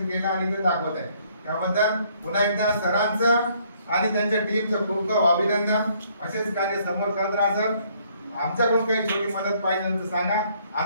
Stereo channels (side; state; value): both; inverted; correlation -0.65